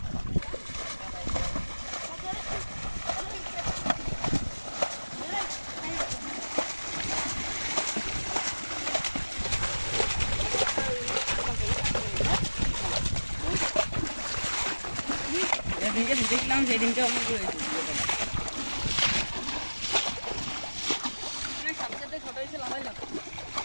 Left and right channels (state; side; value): inverted; both; correlation -1.00